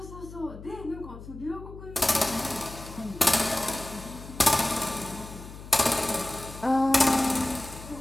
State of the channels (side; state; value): left; noise; hum, 14 dB below the sound